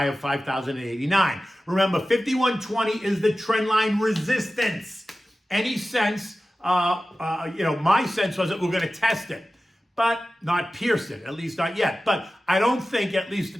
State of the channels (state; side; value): normal; both; correlation 0.95